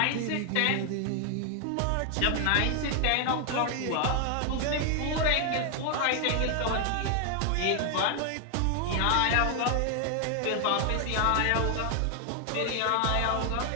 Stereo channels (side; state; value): both; different; correlation 0.00